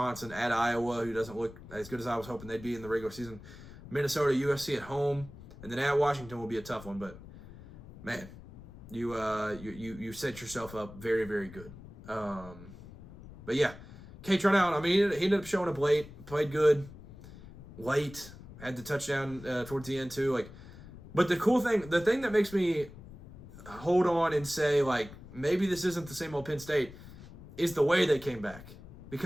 at Iowa, who doesn't look as good as I was hoping they'd be in the regular season. Minnesota, USC at home, and then at Washington will be a tough one. But man, you set yourself up very, very good. But yeah, Kaytron Allen, I mean, he ended up showing up late, played good, late, had the touchdown towards the end too. Like, but the thing that makes me hold on and say, like, maybe this isn't the same old Penn State is the way they came back.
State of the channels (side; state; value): left; noise; rumble, 17 dB below the sound